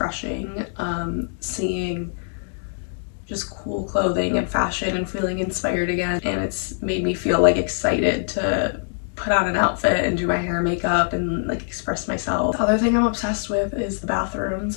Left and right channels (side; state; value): right; silent; digital silence